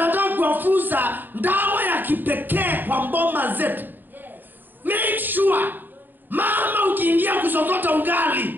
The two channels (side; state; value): left; late; 0.091 ms